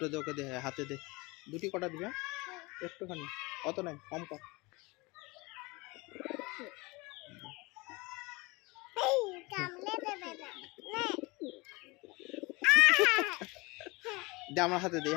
দে, ওকে দে, হাতে দে। দুটি কটা দিবে, একটুখানি, অত নাই, কম কর। দে আমার হাতে দে,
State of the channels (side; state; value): right; quieter; 24.7 dB